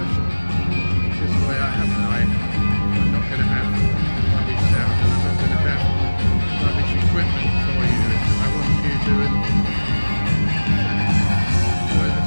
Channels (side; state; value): both; inverted; correlation -1.00